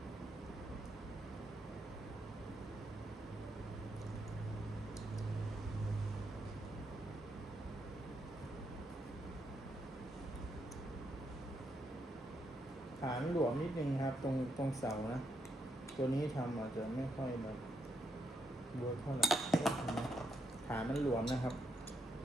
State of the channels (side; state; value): both; normal; correlation 0.78